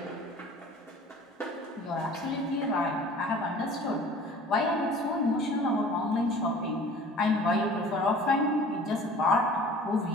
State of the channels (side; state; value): both; normal; correlation 0.46